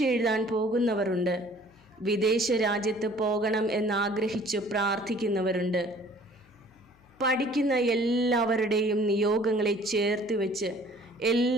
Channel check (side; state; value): left; noise; hum, 30 dB below the sound